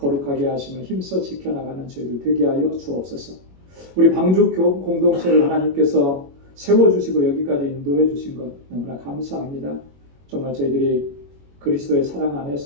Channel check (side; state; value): left; late; 21 ms